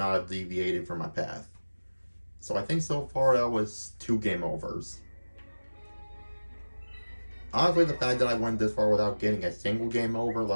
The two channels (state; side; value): inverted; both; correlation -1.00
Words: have deviated from my path. So I think so far that was 2 game overs. Honestly, the fact that I went this far without getting a single game over,